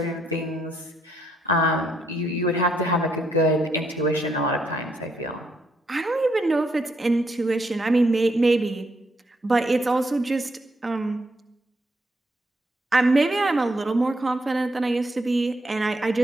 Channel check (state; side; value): normal; both; correlation 0.75